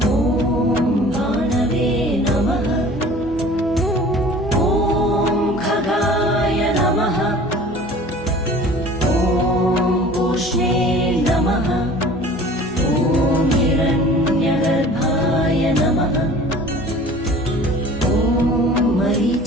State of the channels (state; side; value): normal; both; correlation 0.45